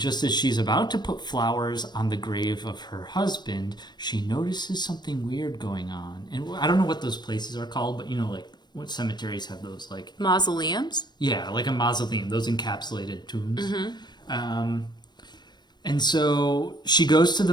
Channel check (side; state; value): right; late; 0.21 ms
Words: as she's about to put flowers on the grave of her husband, she notices something weird going on. And I don't know what those places are called, but you know, like, what cemeteries have those, like... Mausoleums? Yeah, like a mausoleum, those encapsulated tombs. Mm-hmm. And so she goes to the